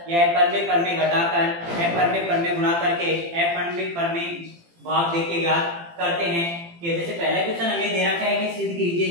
या अपरिमेय परमेय घटाकर अपरिमेय परमेय गुणा करके अपरिमेय परमेय भाग देके ज्ञात करते हैं। कि जैसे पहला क्वेश्चन हमें दे रखा है कि सिद्ध कीजिए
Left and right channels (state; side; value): late; left; 18 ms